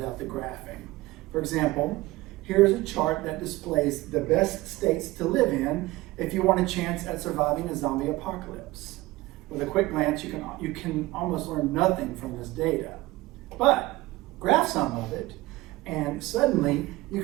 the graphing. For example, here's a chart that displays the best states to live in if you want a chance at surviving a zombie apocalypse. With a quick glance, you can almost learn nothing from this data. But graph some of it, and suddenly you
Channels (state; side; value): quieter; left; 19.4 dB